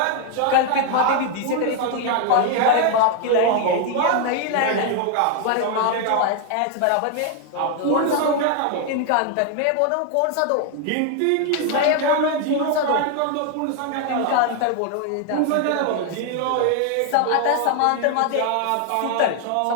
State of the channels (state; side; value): different; both; correlation 0.00